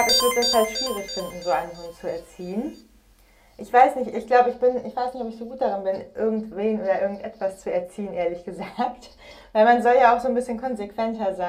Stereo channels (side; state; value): both; identical; correlation 1.00